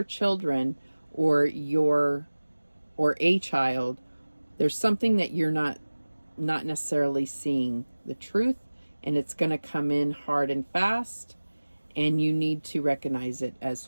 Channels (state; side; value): inverted; both; correlation -1.00